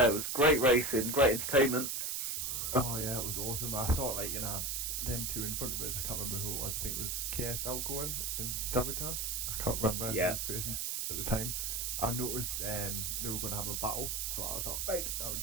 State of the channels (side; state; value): right; noise; hiss, 1 dB below the sound